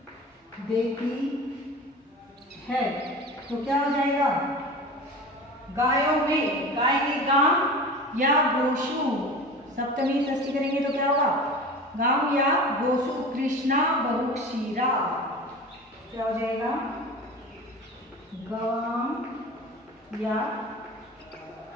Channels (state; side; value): normal; both; correlation 0.34